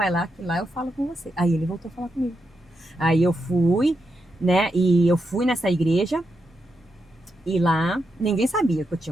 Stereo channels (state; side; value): normal; both; correlation 0.84